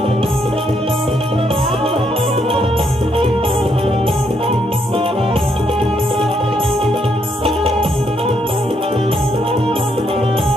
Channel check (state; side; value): normal; both; correlation 0.74